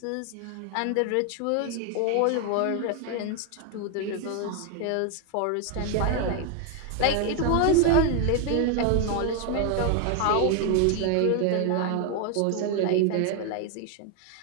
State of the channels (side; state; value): both; different; correlation 0.00